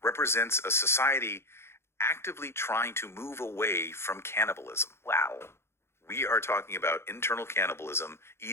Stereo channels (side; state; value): right; late; 0.12 ms